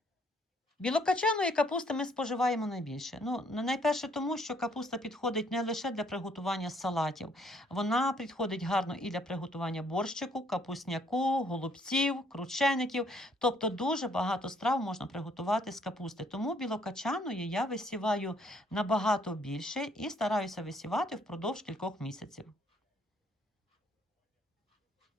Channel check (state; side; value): normal; both; correlation 0.66